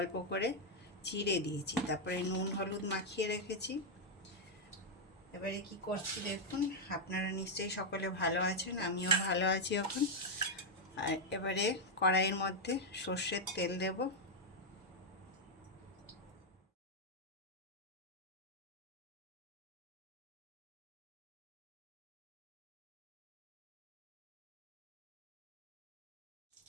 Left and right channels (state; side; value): normal; both; correlation 0.00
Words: করে চিড়ে দিয়েছি, তারপরে নুন হলুদ মাখিয়ে রেখেছি। এবারে কি করছি দেখুন। আপনারা নিশ্চয়ই সকলে ভালো আছেন, আমিও ভালো আছি এখন। আর এবারে কড়াইয়ের মধ্যে সর্ষের তেল দেব।